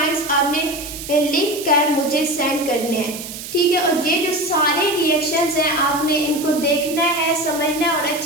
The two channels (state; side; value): noise; right; hiss, 10 dB below the sound